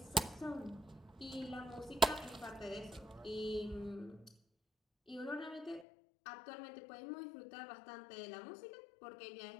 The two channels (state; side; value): drops out; right; at 5.9 s